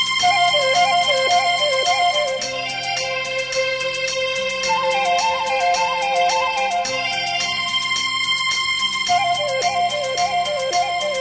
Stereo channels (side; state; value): both; identical; correlation 1.00